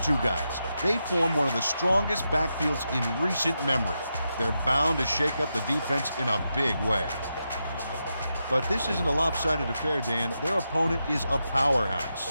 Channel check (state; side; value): inverted; both; correlation -0.86